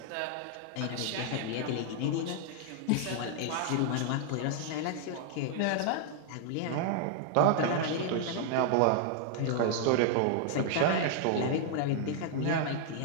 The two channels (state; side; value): different; both; correlation 0.00